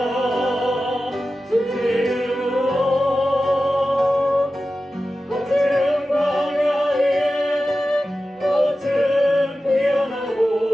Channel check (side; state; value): both; normal; correlation 0.94